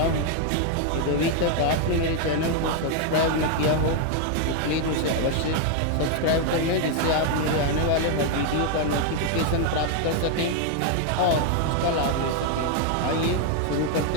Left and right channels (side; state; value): both; different; correlation 0.00